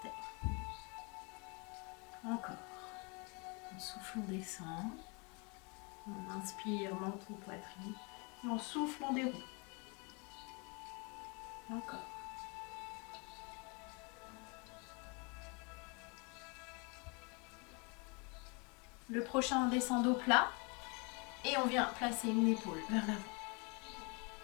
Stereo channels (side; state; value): right; quieter; 31.4 dB